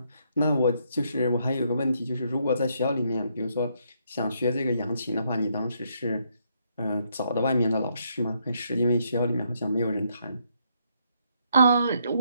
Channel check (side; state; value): both; inverted; correlation -0.73